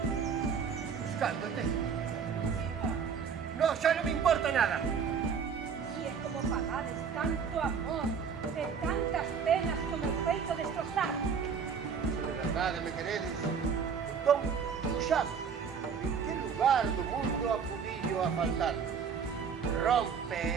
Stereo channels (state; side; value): quieter; left; 6.4 dB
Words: buscándote. No, xa non me importa nada. E é como pagades tanto amor e tantas penas que o meu feito destrozar. Se de verdade me queredes, entón, puxame. En que lugar do mundo acubillo a faltar? Rompe